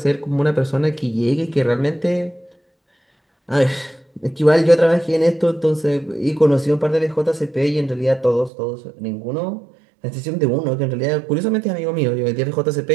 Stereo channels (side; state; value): left; drops out; at 8.5 s